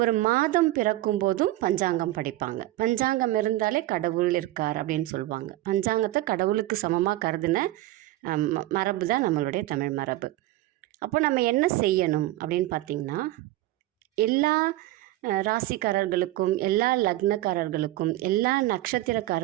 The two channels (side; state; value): left; quieter; 16.5 dB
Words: மாதம் பிறக்கும் போதும் பஞ்சாங்கம் படிப்பாங்க. பஞ்சாங்கம் இருந்தாலே கடவுள் இருக்கார் அப்படின்னு சொல்லுவாங்க. பஞ்சாங்கத்தை கடவுளுக்கு சமமாக கருதின மரபு தான் நம்மளுடைய தமிழ் மரபு. அப்போ நம்ம என்ன செய்யணும் அப்படின்னு பார்த்திங்கன்னா, எல்லா ராசிக்காரர்களுக்கும், எல்லா லக்னக்காரர்களுக்கும், எல்லா